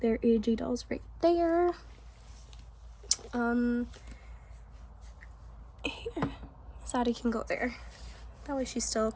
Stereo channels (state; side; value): identical; both; correlation 1.00